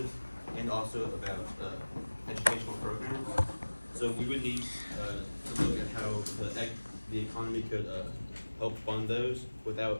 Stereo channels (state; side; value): inverted; both; correlation -1.00